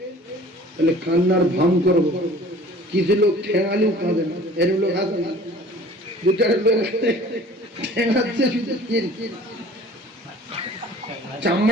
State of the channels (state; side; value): normal; both; correlation 0.48